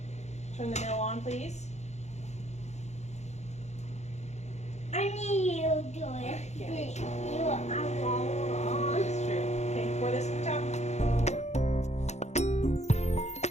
Turn the mill on, please. I need you to do it. Alright, yeah. You are wrong. That's true. Okay, pour this on top.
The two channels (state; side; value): late; right; 0.33 ms